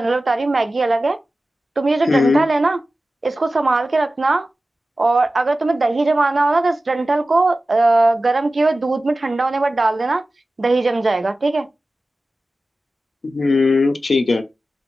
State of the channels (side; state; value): both; normal; correlation 0.95